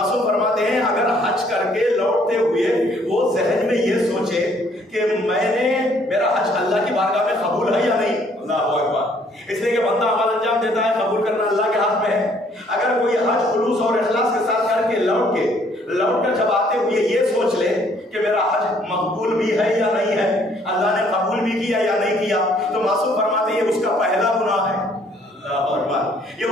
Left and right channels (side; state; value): both; normal; correlation 0.63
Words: فرماتے ہیں اگر حج کر کے لوٹتے ہوئے وہ ذہن میں یہ سوچے کہ میرا حج اللہ کی بارگاہ میں قبول ہے یا نہیں. اللہ اکبر. اس لیے کہ بندہ عمل انجام دیتا ہے، قبول کرنا اللہ کے ہاتھ میں ہے. اگر کوئی حج خلوص اور اخلاص کے ساتھ کر کے لوٹ کر جب آتے ہوئے یہ سوچ لے کہ میرا حج مقبول بھی ہے یا نہیں ہے، اللہ نے قبول بھی کیا یا نہیں کیا، تو معصوم فرماتے ہیں یہ اس کا پہلا گناہ ہے. یہ